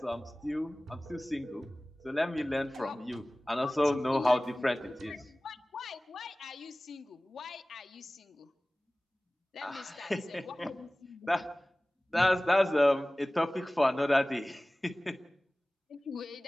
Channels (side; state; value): both; normal; correlation 0.98